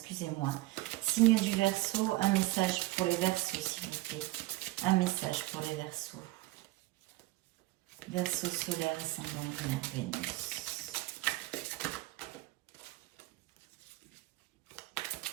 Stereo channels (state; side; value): quieter; left; 19.3 dB